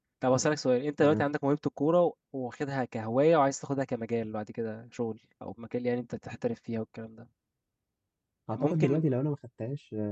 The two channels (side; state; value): both; identical; correlation 1.00